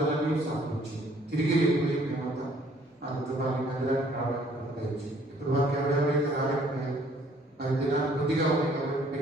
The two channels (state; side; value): normal; both; correlation 0.60